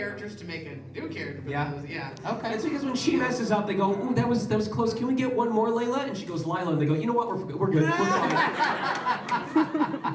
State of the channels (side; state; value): both; identical; correlation 1.00